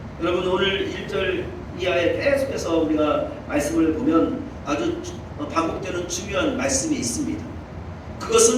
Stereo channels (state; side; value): identical; both; correlation 1.00